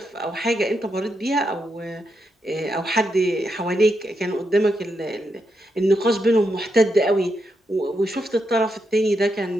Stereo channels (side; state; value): both; normal; correlation 0.83